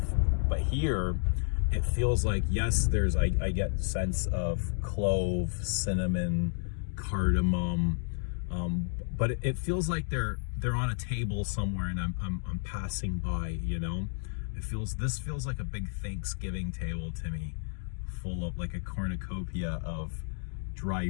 But here it feels like, yes, there's, I get sense of clove, cinnamon, cardamom, but it feels like they're on a table somewhere, and I'm passing by, you know. This feels like a big Thanksgiving table to me, full of like a cornucopia of dry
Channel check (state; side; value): silent; right; digital silence